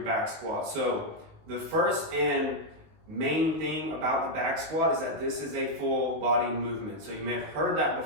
back squat. So the first and main thing about the back squat is that this is a full body movement. So you may have heard that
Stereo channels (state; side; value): late; left; 19 ms